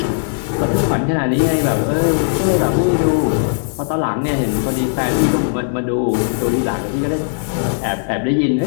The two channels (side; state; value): right; silent; 61 dB below the other